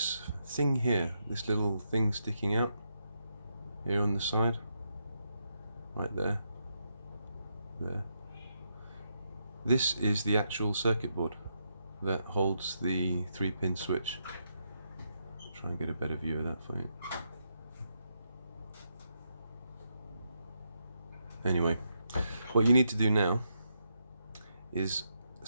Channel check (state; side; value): inverted; both; correlation -0.81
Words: thing here, this little thing sticking out here on the side, right there. This is the actual circuit board that holds the 3-pin switch. Try and get a better view of that for you. Anyway, what you need to do now is